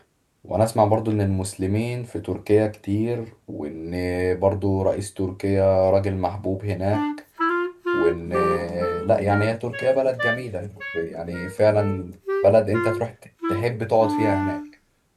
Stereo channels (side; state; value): both; identical; correlation 1.00